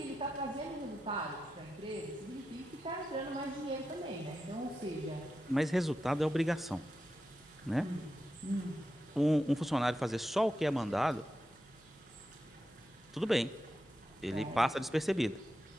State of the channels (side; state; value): right; noise; hum, 29 dB below the sound